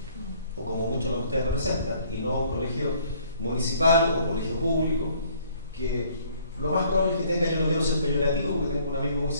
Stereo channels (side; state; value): both; inverted; correlation -0.60